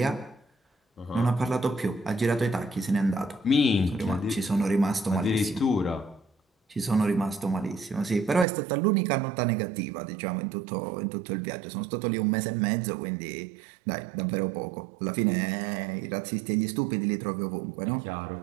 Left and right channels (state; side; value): drops out; left; at 8.5 s